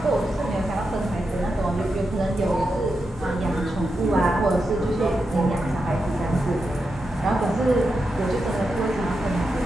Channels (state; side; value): normal; both; correlation 0.87